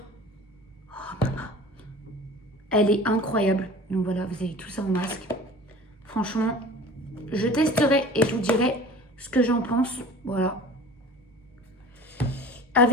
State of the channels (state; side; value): normal; both; correlation 0.41